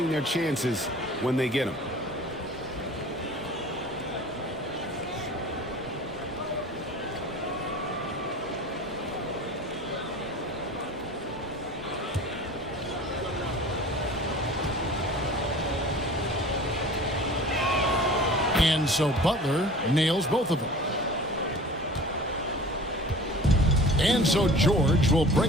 their chances when they get them. And so Butler nails both of them. And so George will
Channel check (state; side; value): normal; both; correlation 0.42